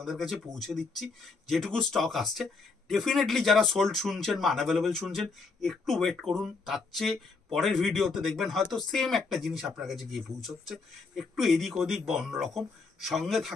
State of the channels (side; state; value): right; quieter; 4.3 dB